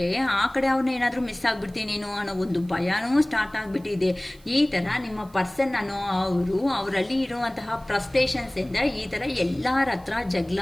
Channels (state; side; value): noise; right; hiss, 28 dB below the sound